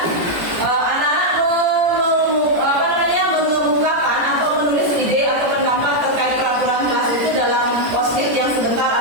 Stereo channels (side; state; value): left; late; 17 ms